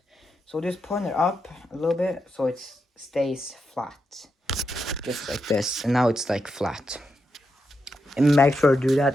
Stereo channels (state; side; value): normal; both; correlation 0.85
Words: so just point it up a little bit so it stays flat, just like this, and now it's like flat. And make sure to do